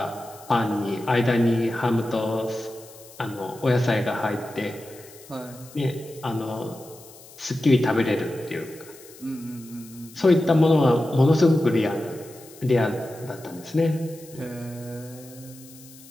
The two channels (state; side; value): noise; left; hiss, 21 dB below the sound